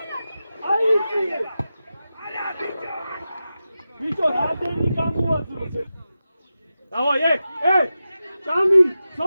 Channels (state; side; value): inverted; both; correlation -0.92